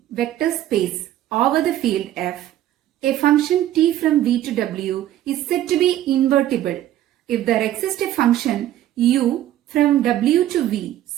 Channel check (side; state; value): left; quieter; 12.8 dB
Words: vector space over the field F. A function t from V to W is said to be invertible if there exists a function u from W to V